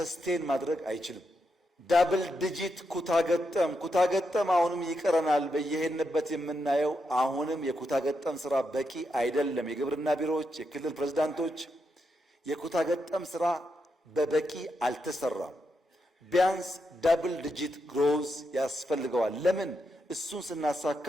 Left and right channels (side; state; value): both; normal; correlation 0.83